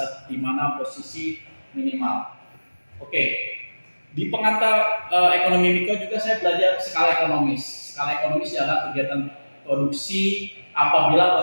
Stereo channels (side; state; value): both; inverted; correlation -1.00